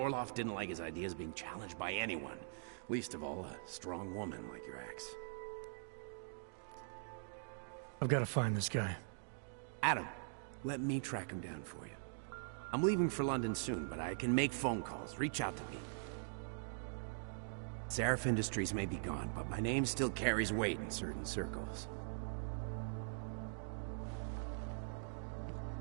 didn't like his ideas being challenged by anyone. Least of all, a strong woman like your ex. I've got to find this guy. Adam, let me track him down for you. I'm leaving for London soon, but I can make phone calls. Reach out to me. Seraph Industries may be gone, but my name still carries weight in certain circles.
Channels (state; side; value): silent; left; digital silence